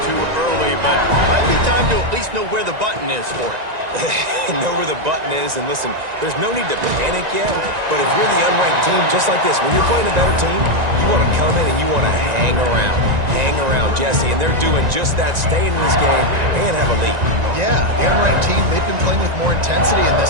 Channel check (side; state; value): left; late; 1.9 ms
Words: too early, but might be time to at least know where the button is for it. Know where the button is, and listen, there's no need to panic yet, but if you're the unranked team, just like this, when you're playing a better team, you want to come in and you want to hang around, Jesse, and they're doing just that, staying in this game and have a lead. Yeah, the unranked team, they've been playing with more intensity in